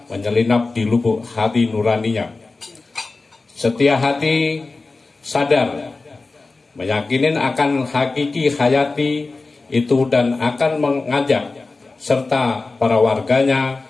menyelinap di lubuk hati nuraninya. Setia hati sadar meyakinin akan hakiki hayati itu dan akan mengajak serta para warganya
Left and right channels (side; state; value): right; quieter; 3.7 dB